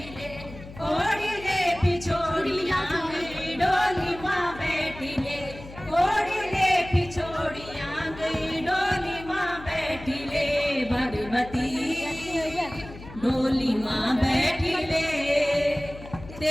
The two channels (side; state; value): left; noise; hum, 16 dB below the sound